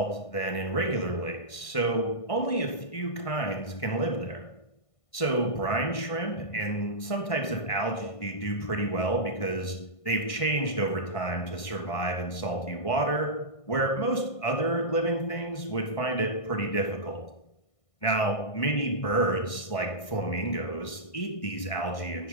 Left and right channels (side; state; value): right; late; 1.5 ms